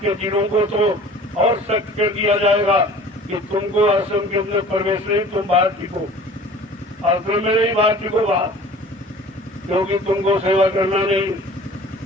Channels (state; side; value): normal; both; correlation 0.45